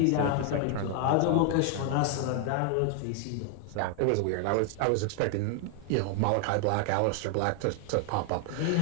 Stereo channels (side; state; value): both; different; correlation 0.00